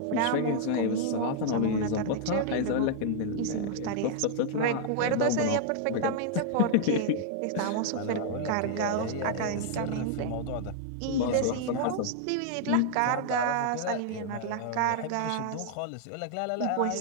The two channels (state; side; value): different; both; correlation -0.01